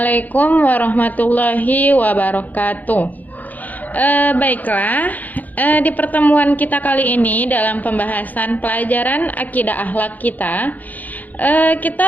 warahmatullahi wabarakatuh. Baiklah, di pertemuan kita kali ini dalam pembahasan pelajaran akidah akhlak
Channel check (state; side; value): late; right; 0.081 ms